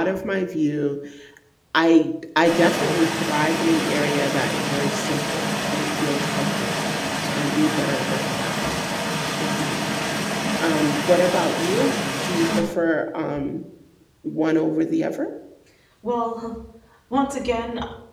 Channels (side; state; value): both; identical; correlation 1.00